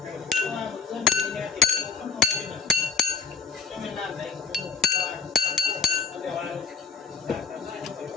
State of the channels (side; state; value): right; quieter; 5.6 dB